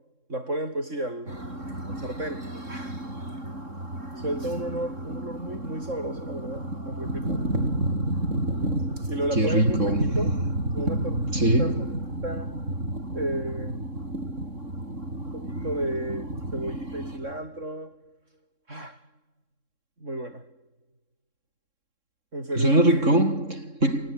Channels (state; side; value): late; left; 3.7 ms